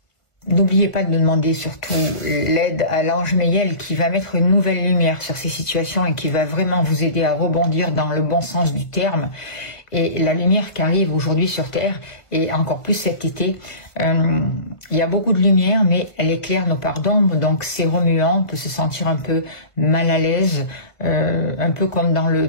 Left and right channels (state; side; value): late; right; 1.5 ms